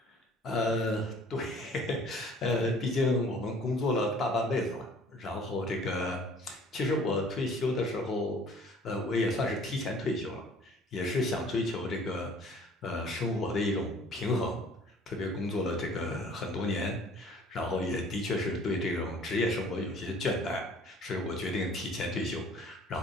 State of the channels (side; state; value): both; normal; correlation 0.53